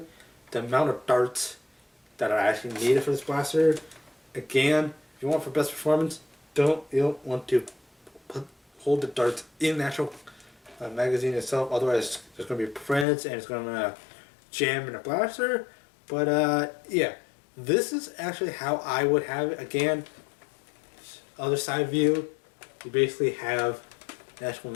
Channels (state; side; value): drops out; right; at 13.1 s